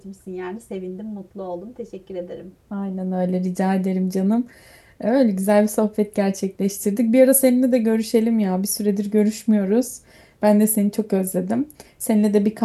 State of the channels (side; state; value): both; identical; correlation 1.00